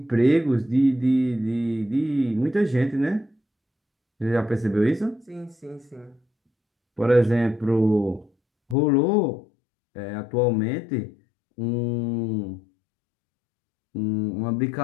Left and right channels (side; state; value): right; drops out; at 8.8 s